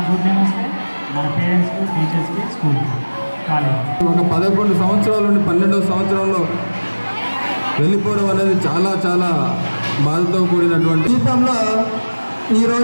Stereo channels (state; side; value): inverted; both; correlation -1.00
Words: గుడ్ నేమ్ వస్తే మన పేరెంట్స్కి టీచర్స్కి స్కూల్కి కాలేజ్. ఒక 11 సంవత్సరాల నుండి 12వ సంవత్సరంలో వెళ్ళిపోవడం అనేది చాలా చాలా బాధతో కూడినటువంటి జీవితంలో